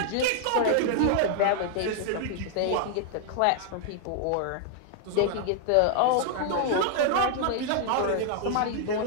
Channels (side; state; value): both; different; correlation 0.00